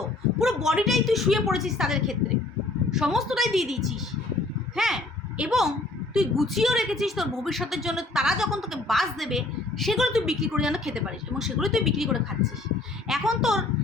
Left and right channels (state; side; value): quieter; right; 3.0 dB